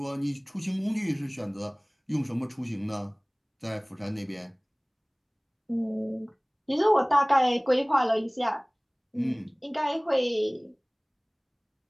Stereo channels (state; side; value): identical; both; correlation 1.00